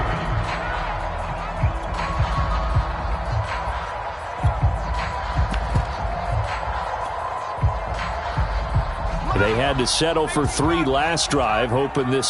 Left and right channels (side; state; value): both; identical; correlation 1.00